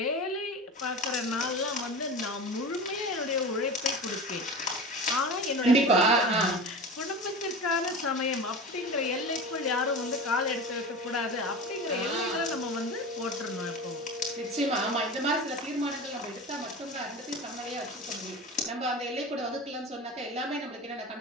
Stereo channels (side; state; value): both; normal; correlation 0.30